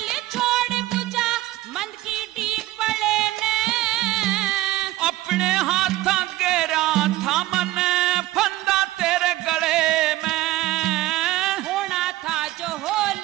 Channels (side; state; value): left; quieter; 16.8 dB